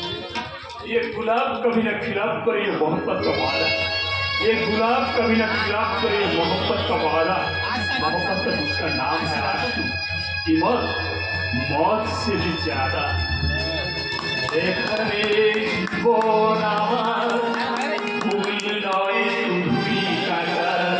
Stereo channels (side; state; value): both; identical; correlation 1.00